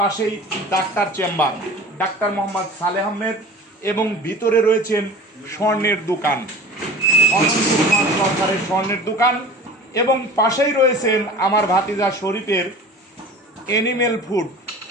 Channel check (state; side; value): normal; both; correlation 0.39